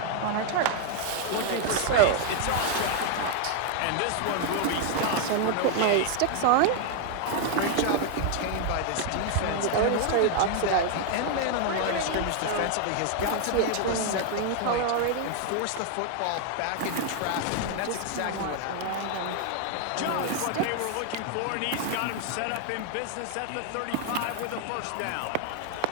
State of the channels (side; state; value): both; different; correlation 0.00